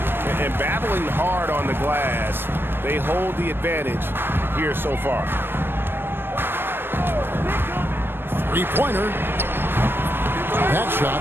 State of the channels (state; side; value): late; left; 0.10 ms